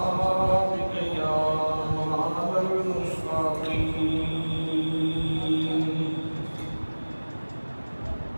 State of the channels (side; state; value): both; inverted; correlation -1.00